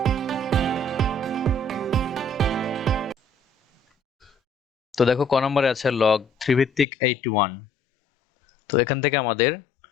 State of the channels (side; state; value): right; drops out; at 6.9 s